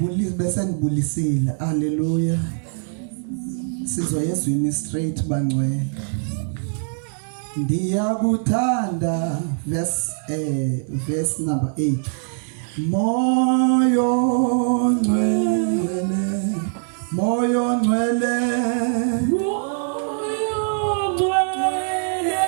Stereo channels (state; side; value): silent; left; digital silence